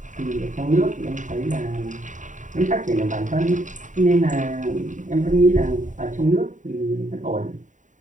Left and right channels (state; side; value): late; left; 0.36 ms